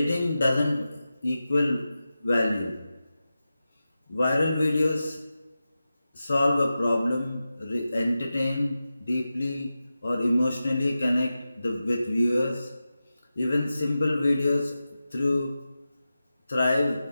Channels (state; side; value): inverted; both; correlation -0.93